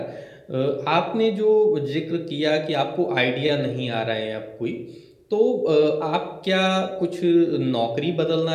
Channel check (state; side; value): identical; both; correlation 1.00